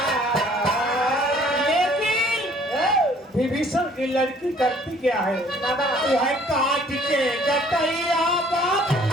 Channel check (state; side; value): normal; both; correlation 0.57